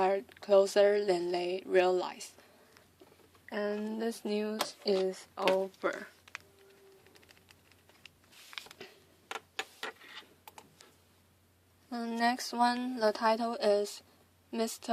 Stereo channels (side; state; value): both; identical; correlation 1.00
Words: closer than they realize. And this news is over. The next one, the title is